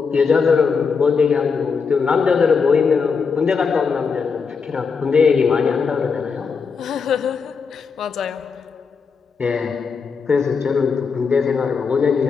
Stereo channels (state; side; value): quieter; right; 5.4 dB